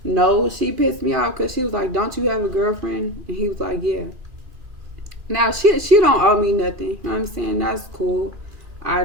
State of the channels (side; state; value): left; late; 2.4 ms